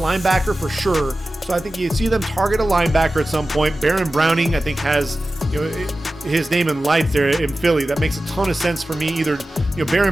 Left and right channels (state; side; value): normal; both; correlation 0.95